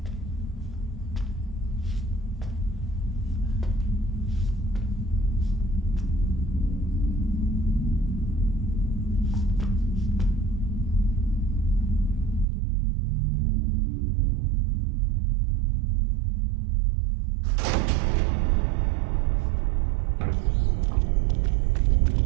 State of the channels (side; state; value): left; drops out; at 12.5 s